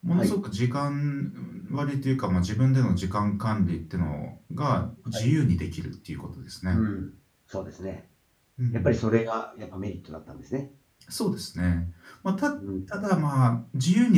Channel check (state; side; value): identical; both; correlation 1.00